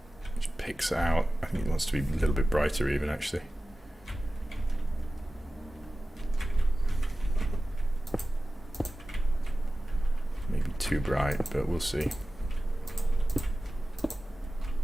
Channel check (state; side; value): normal; both; correlation 0.95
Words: which picks out. I think it wants to be a little bit brighter even, actually. Maybe too bright, but we'll see.